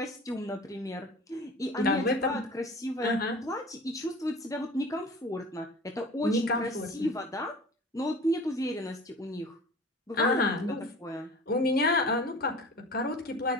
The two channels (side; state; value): both; normal; correlation 0.40